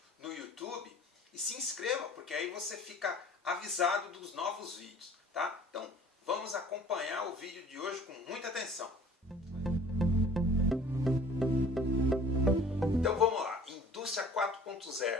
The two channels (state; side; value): normal; both; correlation 0.48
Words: no YouTube, e se inscreva, porque aí você fica avisado dos novos vídeos, tá? Então, vamos acompanhar o vídeo de hoje com muita atenção. Então vamos lá, Indústria